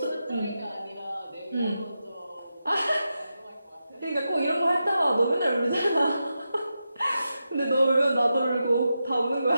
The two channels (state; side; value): inverted; both; correlation -0.89